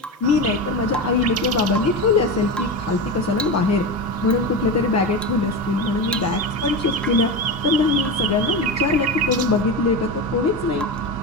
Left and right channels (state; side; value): normal; both; correlation 0.21